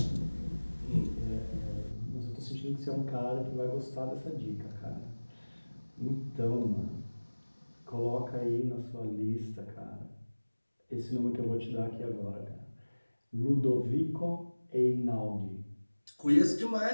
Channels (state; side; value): inverted; both; correlation -1.00